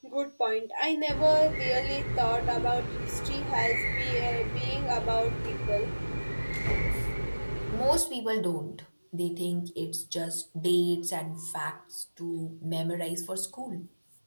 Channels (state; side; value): inverted; both; correlation -1.00